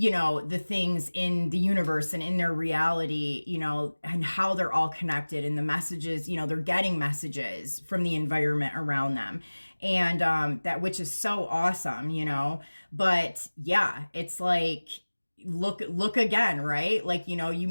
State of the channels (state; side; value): inverted; both; correlation -1.00